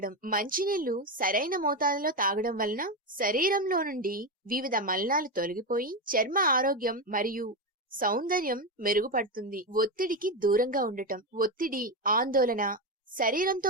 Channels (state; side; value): normal; both; correlation 0.12